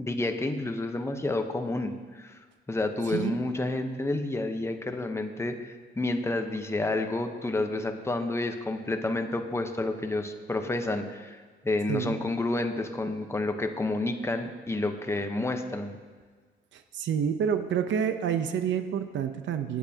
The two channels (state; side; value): normal; both; correlation 0.68